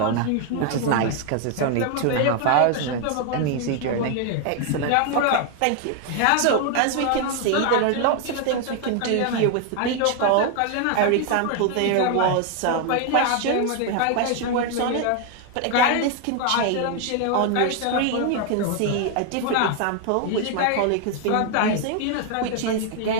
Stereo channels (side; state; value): both; different; correlation 0.01